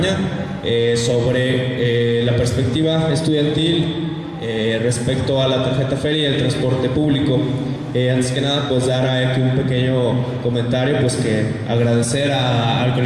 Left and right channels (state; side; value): identical; both; correlation 1.00